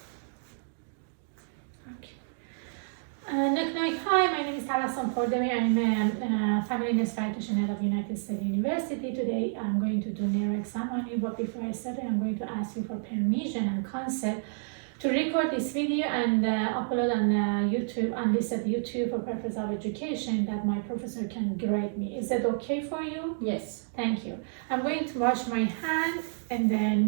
Hi, my name is Tabassum Khordebi. I'm a family nurse practitioner at United States University. Today I'm going to do neuro exam on you, but before I start, I'm going to ask you for permission and consent to record this video and upload on YouTube, on this at YouTube for purpose of education, that my professor can grade me. Is that okay for you? Yes. Thank you. I'm going to wash my hand, and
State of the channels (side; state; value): left; silent; digital silence